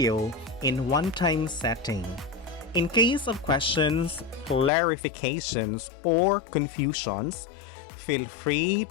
in one-time setting. In case of questions, clarifications, or confusions, feel free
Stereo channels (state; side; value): drops out; right; at 4.7 s